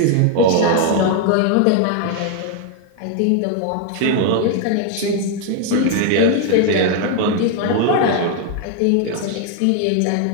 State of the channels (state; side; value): different; both; correlation 0.01